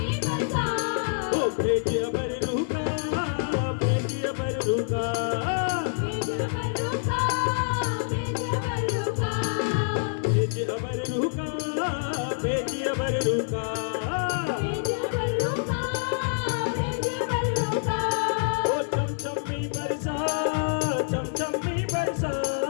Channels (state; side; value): silent; right; digital silence